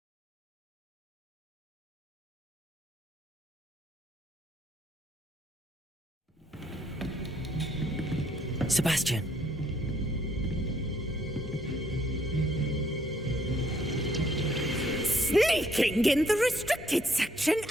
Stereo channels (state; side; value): normal; both; correlation 0.67